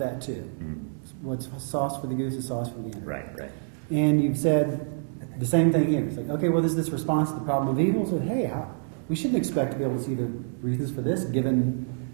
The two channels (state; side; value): silent; left; digital silence